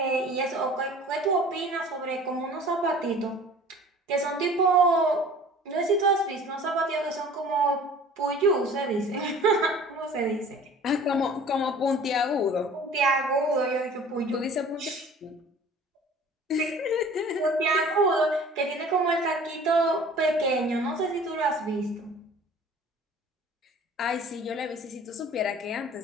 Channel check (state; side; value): normal; both; correlation 0.46